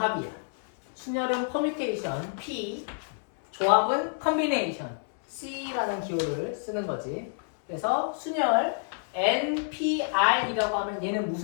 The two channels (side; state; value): right; silent; digital silence